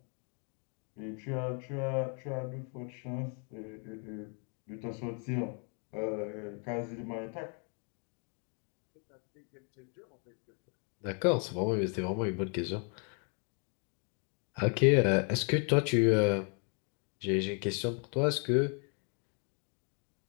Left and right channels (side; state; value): right; quieter; 39.3 dB